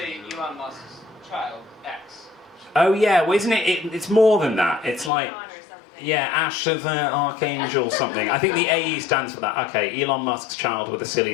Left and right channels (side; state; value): right; drops out; at 5.1 s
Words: Elon Musk's child, X. Oh, yeah. Well, isn't it? It's more than that. It's like... Yeah, Ash of Archangel something. I think the AE stands for that. Okay, Elon Musk's child with a silly